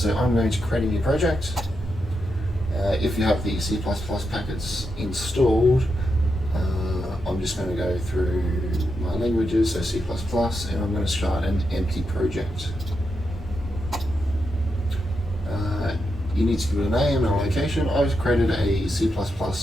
I'm going to create a new project. If you have the C++ packets installed, I'm just going to go through my languages, so C++, and I'm going to start an empty project. You need to give it a name and a location. I've created a C++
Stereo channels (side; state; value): both; normal; correlation 0.85